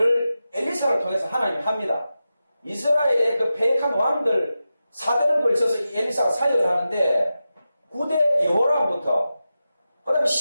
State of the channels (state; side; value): inverted; both; correlation -0.92